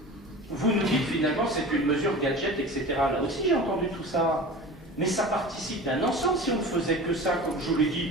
vous nous dites finalement c'est une mesure gadget, etc. Là aussi j'ai entendu tout ça. Mais ça participe d'un ensemble. Si on ne faisait que ça, comme je vous l'ai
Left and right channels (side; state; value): both; normal; correlation 0.35